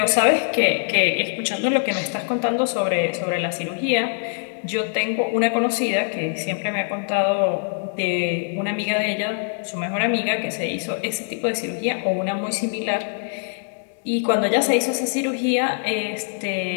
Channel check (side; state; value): right; silent; digital silence